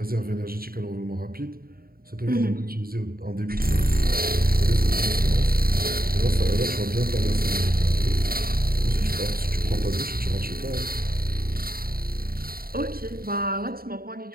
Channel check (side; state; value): left; late; 0.43 ms